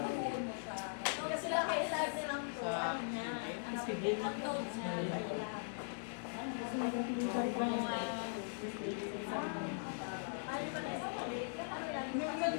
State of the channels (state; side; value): silent; right; digital silence